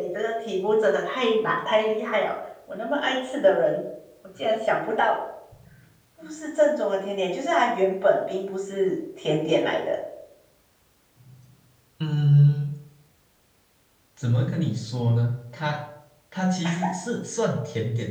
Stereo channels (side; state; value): both; identical; correlation 1.00